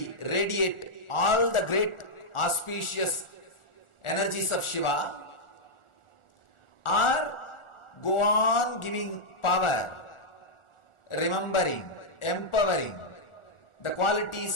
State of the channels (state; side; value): late; right; 1.4 ms